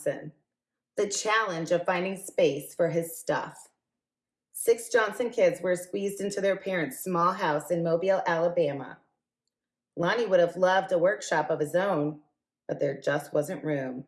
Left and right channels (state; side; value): identical; both; correlation 1.00